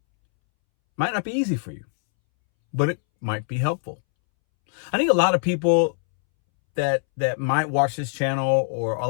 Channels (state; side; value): silent; right; 63 dB below the other